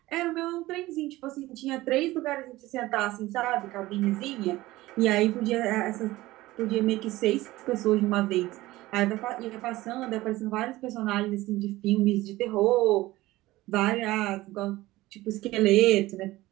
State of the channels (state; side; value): quieter; left; 17.9 dB